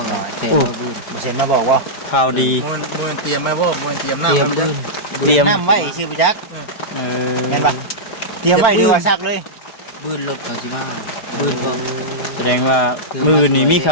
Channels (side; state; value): right; late; 4.4 ms